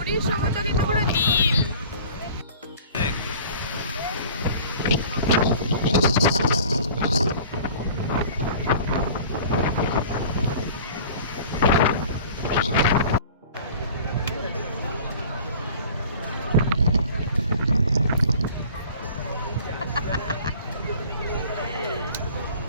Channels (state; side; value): inverted; both; correlation -0.45